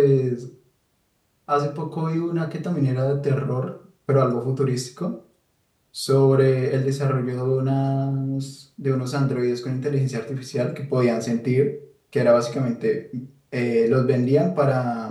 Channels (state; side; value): identical; both; correlation 1.00